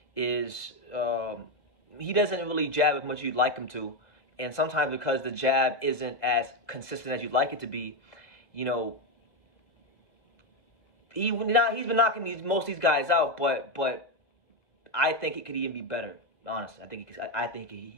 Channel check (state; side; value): late; right; 2.0 ms